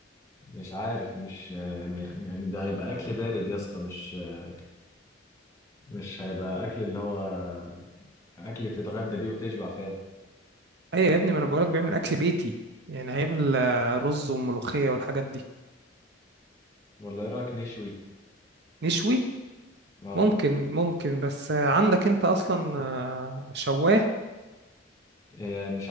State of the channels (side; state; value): both; normal; correlation 0.29